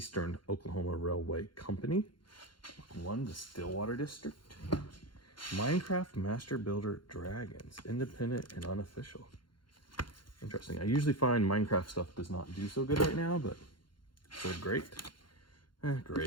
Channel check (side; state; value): right; late; 0.72 ms